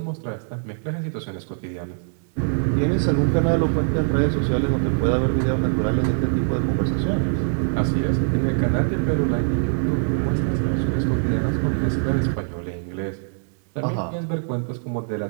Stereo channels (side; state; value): left; silent; 63 dB below the other